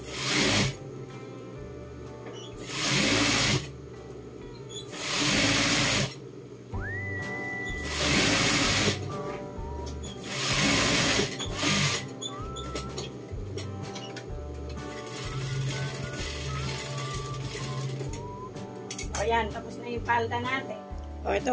O yan, tapos na yung palda natin. O ito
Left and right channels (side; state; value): both; identical; correlation 1.00